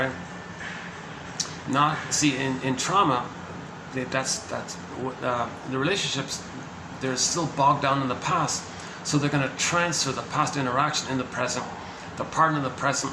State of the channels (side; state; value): both; identical; correlation 1.00